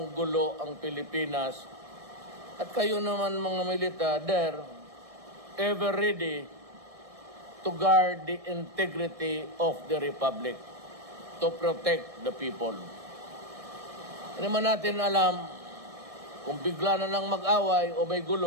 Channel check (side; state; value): left; late; 1.6 ms